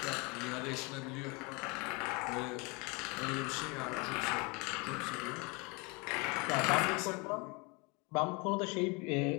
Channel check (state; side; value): quieter; right; 28.0 dB